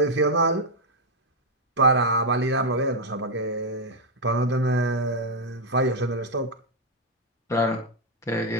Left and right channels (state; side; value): normal; both; correlation 0.00